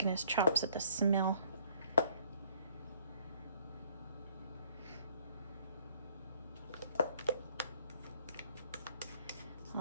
his chops at the smell.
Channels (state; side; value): inverted; both; correlation -0.63